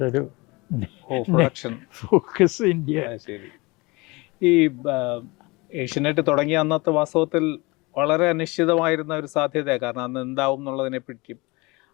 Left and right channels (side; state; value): right; quieter; 24.7 dB